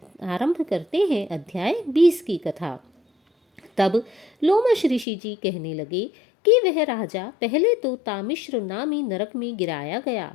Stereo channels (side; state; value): right; drops out; at 5.1 s